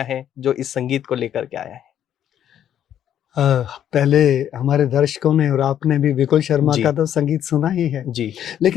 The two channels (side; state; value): right; quieter; 10.3 dB